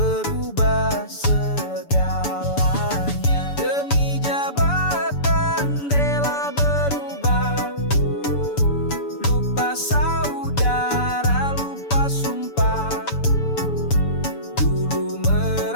segalanya. Demi jabatan rela berubah, lupa saudara, lupa sumpah. Dulu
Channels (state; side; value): late; right; 7.0 ms